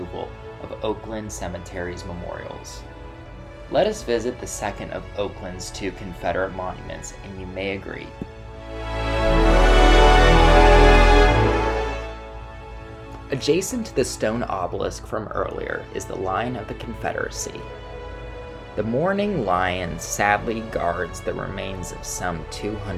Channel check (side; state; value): both; identical; correlation 1.00